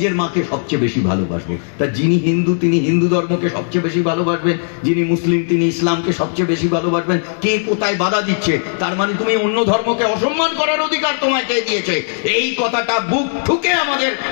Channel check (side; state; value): right; silent; 68 dB below the other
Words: মাকে সবচেয়ে বেশি ভালোবাসবো। তা যিনি হিন্দু তিনি হিন্দু ধর্মকে সবচেয়ে বেশি ভালোবাসবেন, যিনি মুসলিম তিনি ইসলামকে সবচেয়ে বেশি ভালোবাসবেন। কে কোথায় বাধা দিচ্ছে? তার মানে তুমি অন্য ধর্মকে অসম্মান করার অধিকার তোমায় কে দিয়েছে? এই কথাটা বুক ঠুকে আমাদের